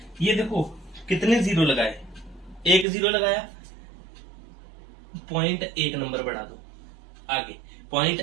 ये देखो कितने जीरो लगाए, एक जीरो लगाया, पॉइंट एक नंबर बढ़ा दो आगे, पॉइंट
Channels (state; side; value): drops out; left; at 2.9 s